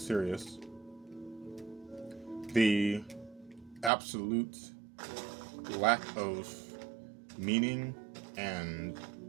The absolute lack of meaning and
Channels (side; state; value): left; drops out; at 3.9 s